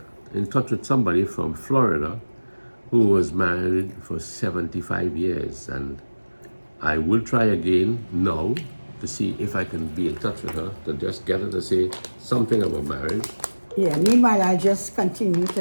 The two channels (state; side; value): inverted; both; correlation -1.00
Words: in touch with somebody from Florida who was married for 75 years, and I will try again now to see if I can be in touch with her to just get her to say something about marriage. Yeah, meanwhile I just continue